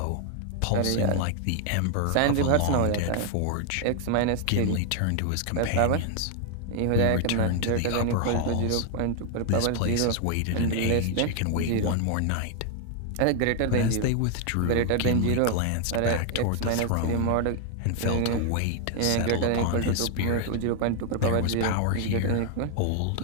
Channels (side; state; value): both; different; correlation 0.00